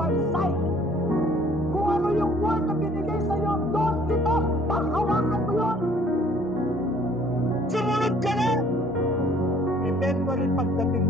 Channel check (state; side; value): normal; both; correlation 0.58